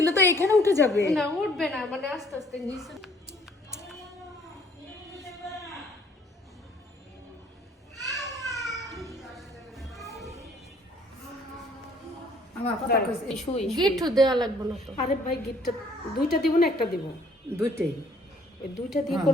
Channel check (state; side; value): normal; both; correlation 0.61